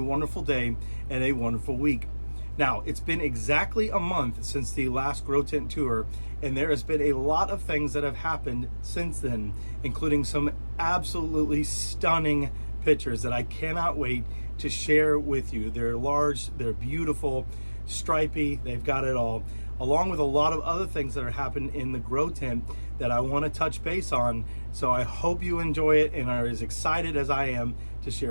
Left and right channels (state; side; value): inverted; both; correlation -1.00